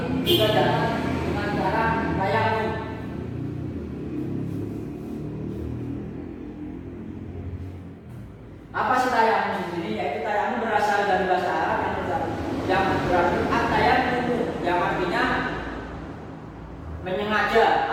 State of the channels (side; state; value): both; identical; correlation 1.00